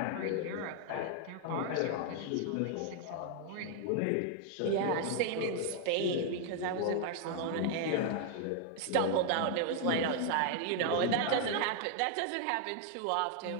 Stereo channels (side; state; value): both; different; correlation 0.00